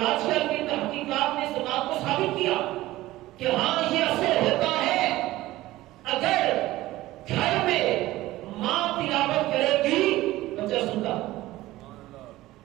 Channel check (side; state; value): left; quieter; 16.9 dB